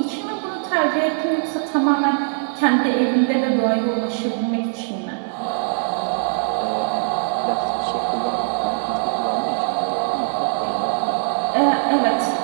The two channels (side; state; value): left; silent; digital silence